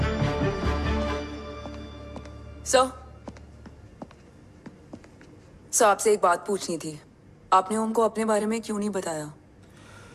सर आपसे एक बात पूछनी थी। आपने ओम को अपने बारे में क्यों नहीं बताया?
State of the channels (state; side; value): identical; both; correlation 1.00